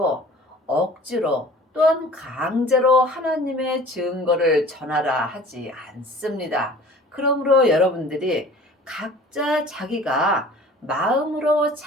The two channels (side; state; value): both; normal; correlation 0.46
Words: 억지로 또한 강제로 하나님의 증거를 전하라 하지 않습니다. 그러므로 여러분들이 각자 자기가 마음으로